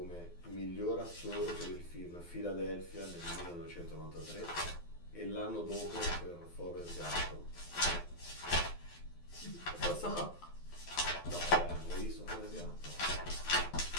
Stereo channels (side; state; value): right; late; 12 ms